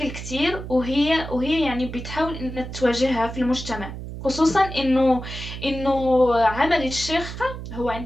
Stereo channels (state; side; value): noise; right; hum, 9 dB below the sound